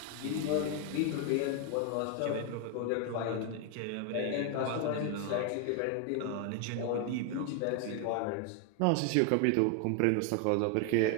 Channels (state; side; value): different; both; correlation 0.01